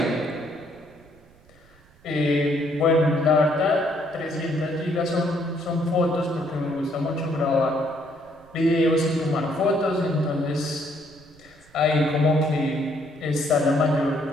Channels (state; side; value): noise; right; rumble, 28 dB below the sound